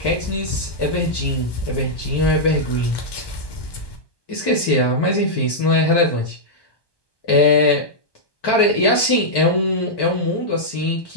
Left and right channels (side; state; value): right; late; 1.2 ms